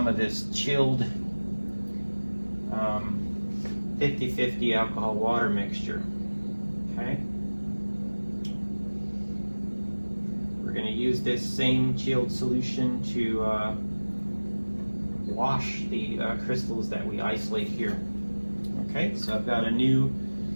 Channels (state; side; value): inverted; both; correlation -1.00